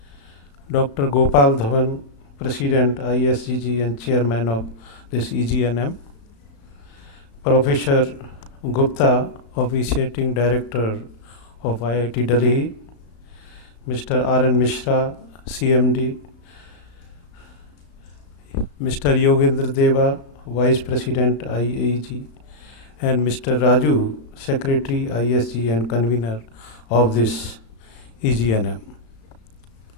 Dr. Gopal Dhawan, President, ISGG and Chairman of this EGNM, Professor Gupta, Officiating Director of IIT Delhi, Mr. R.N. Mishra, CMD, Mr. Yogendra Deva, Vice President, IAEG, and Mr. Raju, Secretary, ISG and Convener of this EGNM.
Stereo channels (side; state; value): right; late; 35 ms